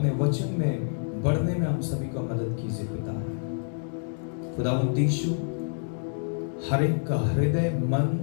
वचन में बढ़ने में हम सभी को मदद कीजिए पिता। खुदावंद यीशु, हर एक का हृदय, मन,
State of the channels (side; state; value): right; silent; digital silence